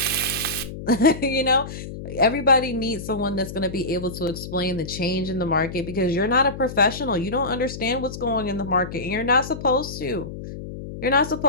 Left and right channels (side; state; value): left; noise; hum, 10 dB below the sound